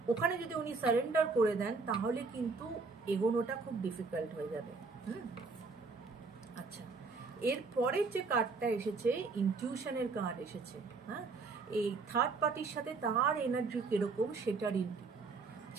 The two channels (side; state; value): left; quieter; 4.3 dB